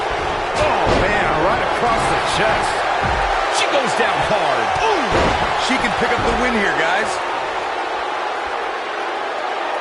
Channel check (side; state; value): both; identical; correlation 1.00